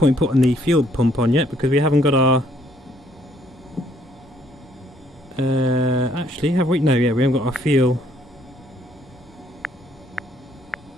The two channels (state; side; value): normal; both; correlation 0.66